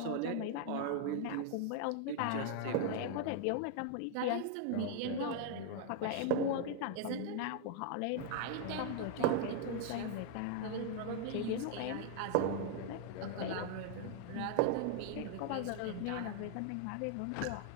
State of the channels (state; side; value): different; both; correlation 0.00